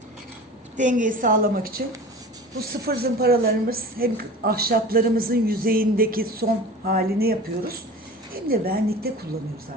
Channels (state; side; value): normal; both; correlation 0.37